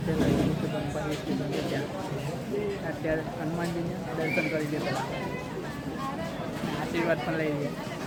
પહેલાં કીધું કે બનભા હિલ સ્ટેશન છે ત્યાં. અત્યારે હનુમાનજીને દર્શન કરી દેતા, આશીર્વાદ પણ લઈ લઈએ.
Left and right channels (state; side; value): identical; both; correlation 1.00